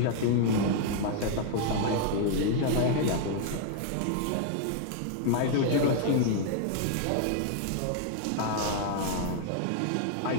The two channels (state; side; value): different; both; correlation 0.00